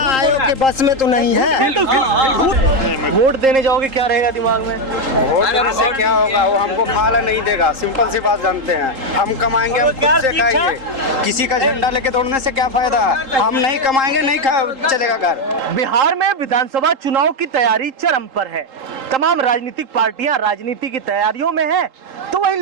के बस में तो नहीं है। वोट देने जाओगे, क्या रहेगा दिमाग में? वोट देने से क्या होगा? वो हमको खाला नहीं देगा, सिंपल सी बात जानते हैं। हम कमाएंगे, हम खुद से खाएंगे। किसी का झंडा लेके दौड़ने से क्या फायदा? हम नहीं कमाएंगे, नहीं चलेगा घर। बिहार में विधानसभा चुनाव की तैयारी चरम पर है। तमाम राजनीतिक पार्टियां राजनीति की तैयारियों में हैं, तो वहीं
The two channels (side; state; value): left; late; 3.8 ms